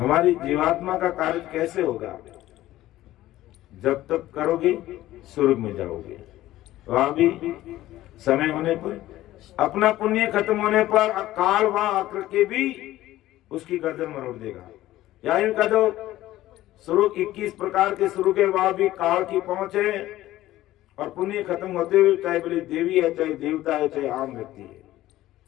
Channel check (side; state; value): right; quieter; 15.2 dB